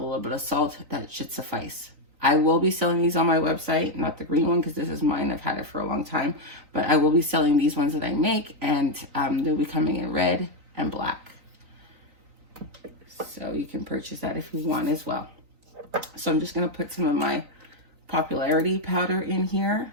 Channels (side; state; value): left; late; 3.9 ms